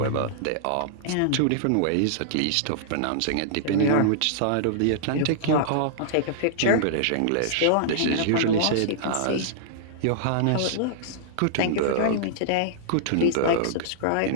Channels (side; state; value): both; different; correlation -0.02